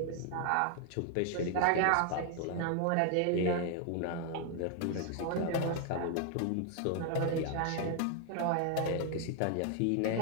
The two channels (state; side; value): different; both; correlation 0.00